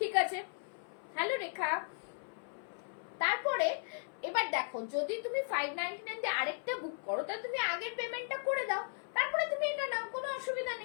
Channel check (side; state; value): right; silent; 53 dB below the other